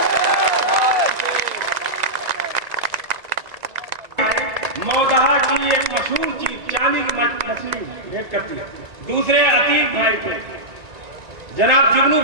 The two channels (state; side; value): late; left; 1.9 ms